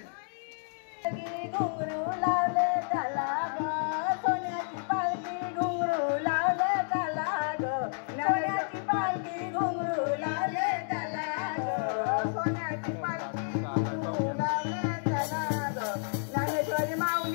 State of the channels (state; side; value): silent; right; digital silence